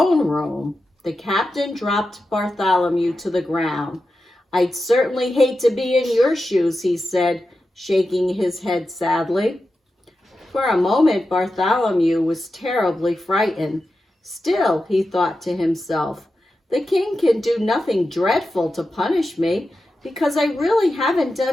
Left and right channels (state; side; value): normal; both; correlation 0.91